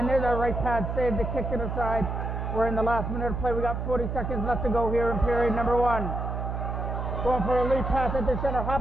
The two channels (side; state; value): right; noise; hum, 3 dB below the sound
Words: there's a right pad save to kick it aside. We're in the last minute of play. We got 40 seconds left to go here in period number 1. Going for a lead pass at the center.